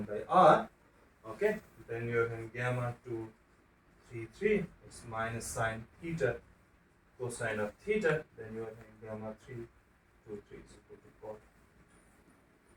by R. Okay. Then you are having gamma 2 3 3, it's minus sine theta cosine of theta. Then you are having gamma 3 2 3 is equal to 4.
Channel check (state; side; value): identical; both; correlation 1.00